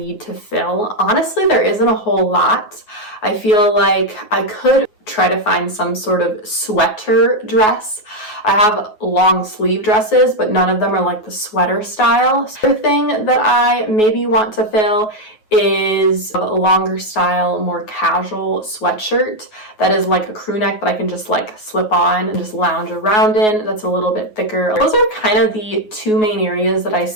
to fill. Honestly, there isn't a whole lot. I feel like I could try to find some sort of sweater dress. I have long sleeve dresses, but none of them are like the sweater style. So the thing that I maybe want to fill is a longer style, more casual sweatshirt that is like a crew neck that I can just like slip on and just lounge around in. That's a little bit thicker. Those are kind of the 2 main areas that I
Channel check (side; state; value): right; late; 9.4 ms